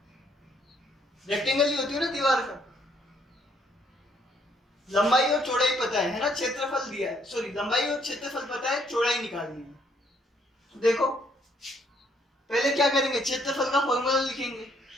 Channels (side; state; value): both; normal; correlation 0.68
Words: रेक्टेंगल ही होती है ना दीवार का। लंबाई और चौड़ाई पता है ना, क्षेत्रफल दिया है, सॉरी लंबाई और क्षेत्रफल पता है, चौड़ाई निकालनी है। तो देखो पहले क्या करेंगे, क्षेत्रफल का फॉर्मूला लिखेंगे,